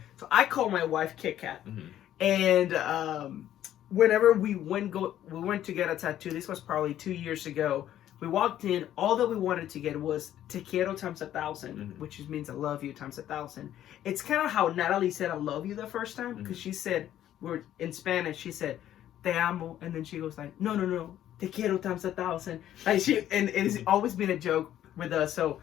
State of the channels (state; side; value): quieter; right; 11.8 dB